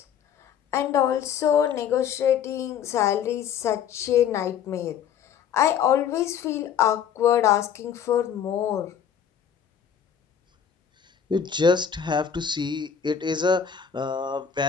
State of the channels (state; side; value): quieter; right; 8.2 dB